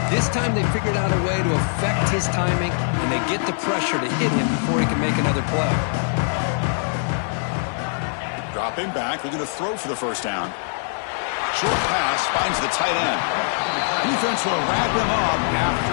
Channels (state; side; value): silent; right; digital silence